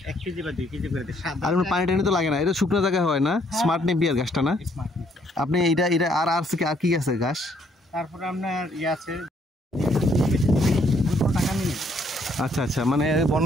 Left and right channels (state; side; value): normal; both; correlation 0.68